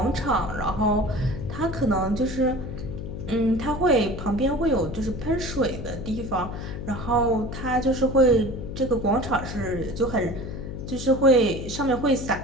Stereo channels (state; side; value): noise; left; hum, 7 dB below the sound